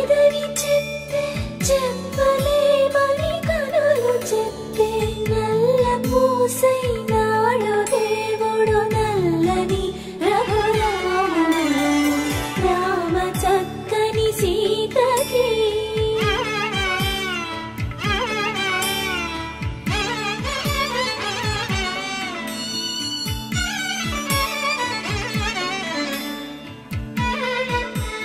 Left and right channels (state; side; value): identical; both; correlation 1.00